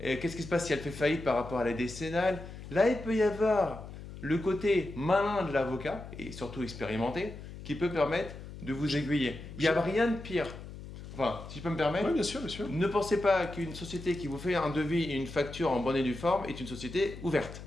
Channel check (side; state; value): left; noise; hum, 13 dB below the sound